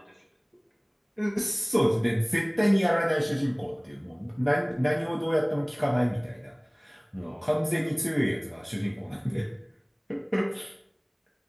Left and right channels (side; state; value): both; identical; correlation 1.00